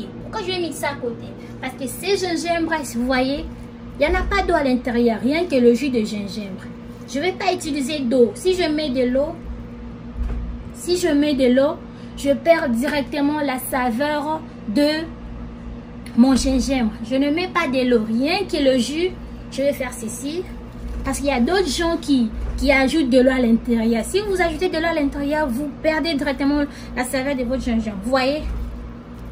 Pourquoi je vais mixer à côté? Parce que ces gingembre, vous voyez, il n'y en a pas d'eau à l'intérieur, rien que le jus de gingembre. Je ne vais pas utiliser d'eau. Si je mets de l'eau, je perds directement la saveur de mon gingembre. Je ne mets pas de l'eau, rien que le jus. Je vais faire ceci. Parce qu'il y a d'autres gens qui ajoutent de l'eau à l'intérieur. Si vous ajoutez de l'eau à l'intérieur, vous perdez directement la saveur de votre gingembre. Vous voyez?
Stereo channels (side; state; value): both; identical; correlation 1.00